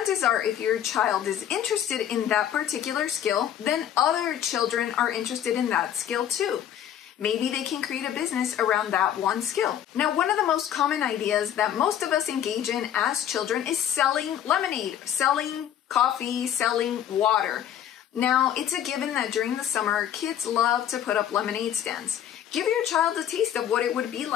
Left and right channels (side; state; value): right; quieter; 10.2 dB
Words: are, if your child is interested in that particular skill, then other children are interested in that skill too. Maybe they can create a business around that one skill. Now, one of the most common ideas that most of us engage in as children is selling lemonade, selling coffee, selling water. Now, it's a given that during the summer, kids love to put up lemonade stands. Give your child a taste of what it would be